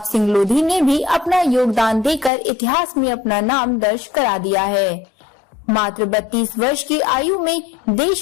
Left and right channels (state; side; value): drops out; right; at 2.3 s